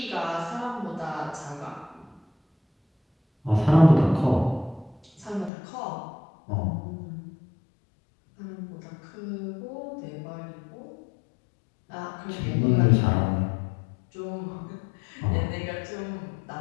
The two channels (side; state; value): right; drops out; at 5.5 s